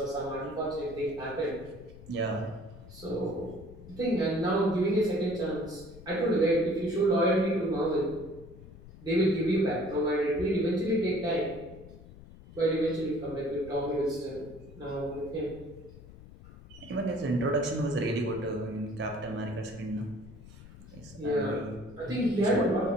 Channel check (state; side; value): noise; left; rumble, 18 dB below the sound